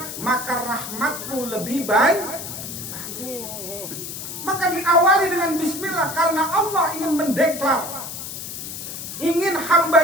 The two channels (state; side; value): noise; left; hiss, 8 dB below the sound